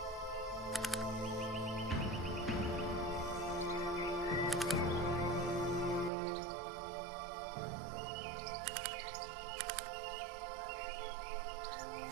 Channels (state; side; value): drops out; left; at 6.1 s